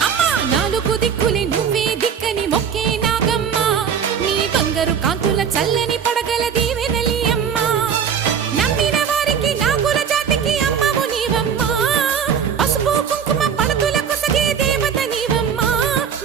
అమ్మా నాలుగు దిక్కులే నువ్వే దిక్కని మొక్కే నాగమ్మ నీ బంగారు కాంతుల చల్లని పడగల దీవెనలి అమ్మ నమ్మిన వారికి నాగుల జాతికి అమ్మవు నీవమ్మ పసుపు కుంకుమ పడతుల కొసగే దేవత నీవమ్మ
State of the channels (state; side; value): quieter; left; 7.5 dB